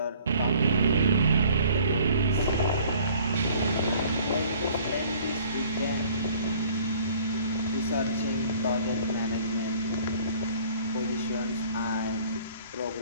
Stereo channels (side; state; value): both; inverted; correlation -0.54